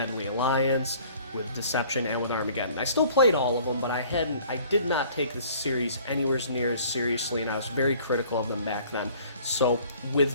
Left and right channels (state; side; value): inverted; both; correlation -0.53